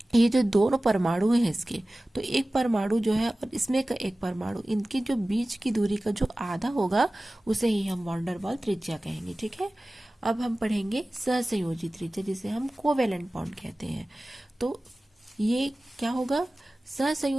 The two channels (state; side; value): normal; both; correlation 0.97